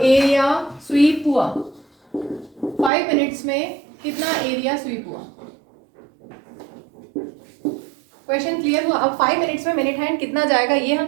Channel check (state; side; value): drops out; left; at 2.9 s